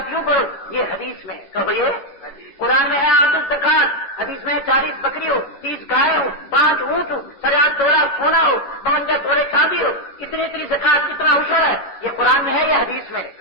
یوں پڑھو. یہ حدیث میں. کہو یہ قرآن میں ہے آتو زکات، حدیث میں 40 بکری ہو، 30 گائے ہو، 5 اونٹ ہو، 50 تولا سونا ہو، 52 توڑے چاندی ہو، اتنی زکات، کتنا عشر ہے. یہ قرآن میں ہے یا حدیث میں؟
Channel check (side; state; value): right; late; 10 ms